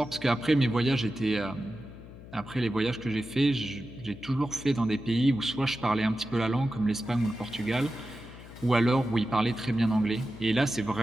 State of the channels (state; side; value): noise; left; hum, 16 dB below the sound